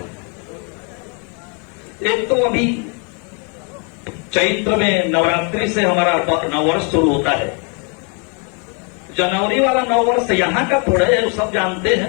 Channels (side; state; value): right; quieter; 36.1 dB